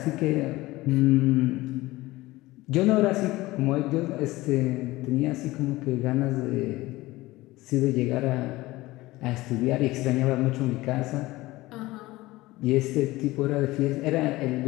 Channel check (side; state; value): right; quieter; 19.0 dB